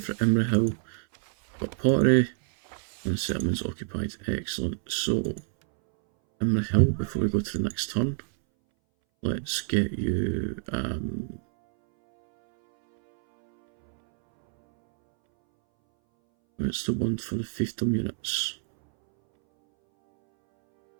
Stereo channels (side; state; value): left; silent; 60 dB below the other